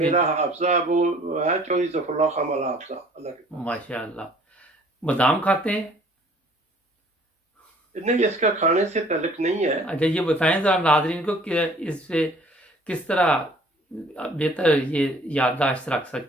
حافظہ وہ ہے چودھری ظفر اللہ خان والا حافظہ، اللہ کے فضل ماشاء اللہ۔ بادام کھاتے ہیں؟ سے۔ نہیں، اس کا کھانے سے تعلق نہیں ہے۔ اچھا یہ بتائیں ذرا ناظرین کو کہ اس سے کس طرح بہتر یہ یادداشت رکھ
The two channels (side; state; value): both; normal; correlation 0.55